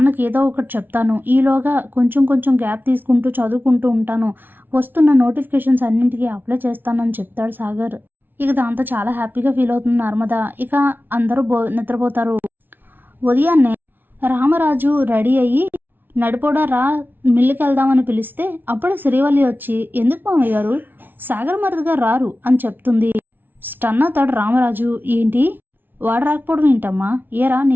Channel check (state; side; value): late; left; 0.093 ms